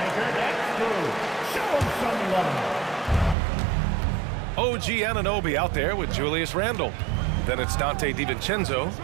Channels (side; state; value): left; drops out; at 3.4 s